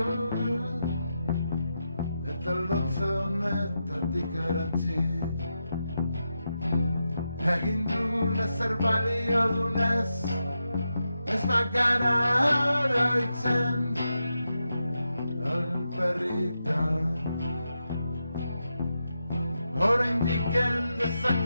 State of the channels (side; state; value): both; inverted; correlation -0.87